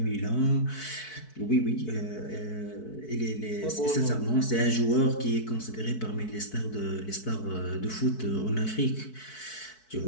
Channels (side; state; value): right; late; 4.6 ms